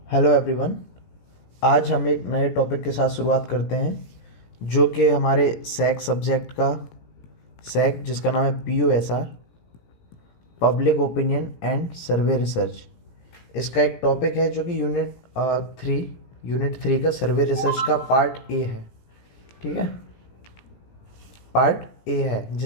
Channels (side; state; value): right; late; 17 ms